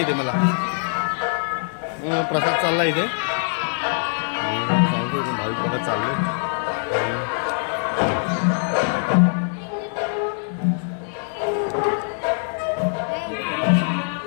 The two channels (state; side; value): silent; right; digital silence